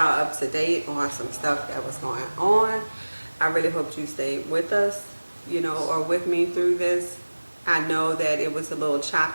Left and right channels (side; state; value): both; inverted; correlation -1.00